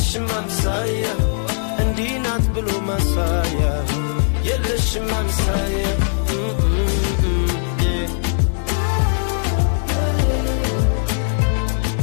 አምሳያ እንዲህ ናት ብሎ ማሳያ የለሽም አምሳያ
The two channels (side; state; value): right; silent; digital silence